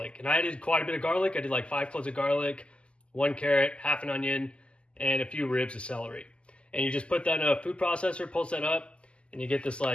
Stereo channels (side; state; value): right; late; 0.053 ms